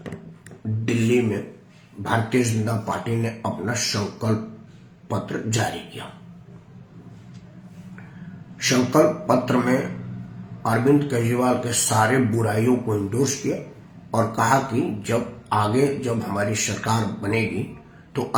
दिल्ली में भारतीय जनता पार्टी ने अपना संकल्प पत्र जारी किया। संकल्प पत्र में अरविंद केजरीवाल के सारे बुराइयों को इंडोर्स किया और कहा कि जब हमारी सरकार बनेगी तो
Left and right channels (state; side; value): identical; both; correlation 1.00